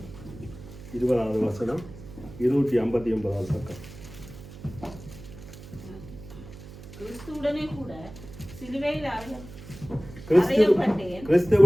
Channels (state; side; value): noise; right; hum, 16 dB below the sound